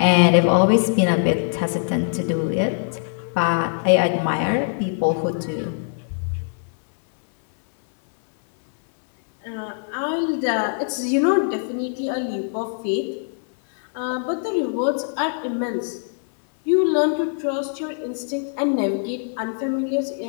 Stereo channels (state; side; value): silent; right; 61 dB below the other